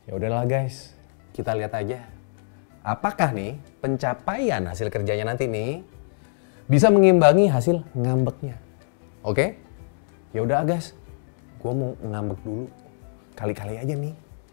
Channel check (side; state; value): right; silent; digital silence